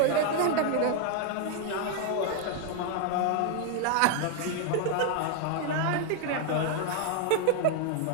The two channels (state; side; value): different; both; correlation 0.00